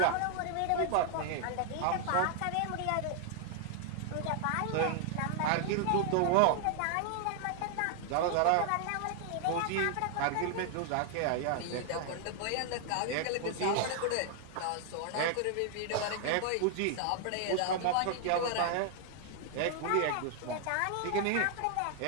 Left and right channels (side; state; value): both; different; correlation 0.00